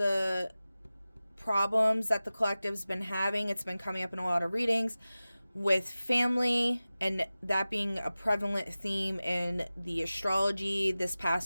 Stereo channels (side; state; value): both; inverted; correlation -0.96